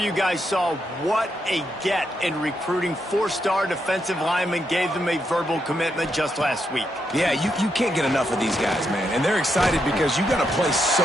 guys saw what a get in recruiting. Four-star defensive linemen gave them a verbal commitment just last week. Yeah, you can't get enough of these guys, man. And they're excited because you got to play so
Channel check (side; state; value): both; normal; correlation 0.81